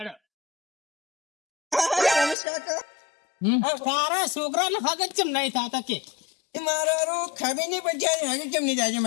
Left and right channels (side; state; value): right; drops out; at 2.4 s